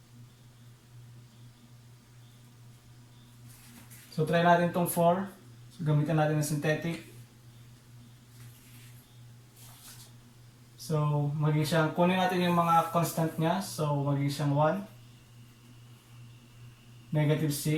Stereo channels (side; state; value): both; identical; correlation 1.00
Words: So try natin tong 4. So gamitan natin ng synthetic. So magiging siyang, kunin natin yung mga constant niya. So magiging siyang 1, negative